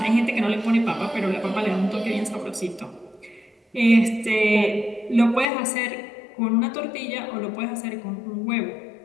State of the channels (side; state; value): right; drops out; at 5.5 s